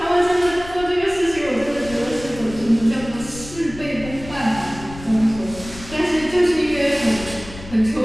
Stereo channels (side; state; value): left; noise; rumble, 15 dB below the sound